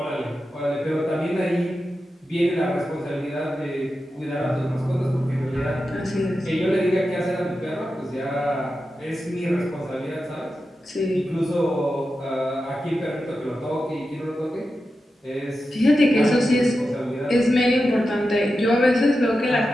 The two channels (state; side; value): normal; both; correlation 0.91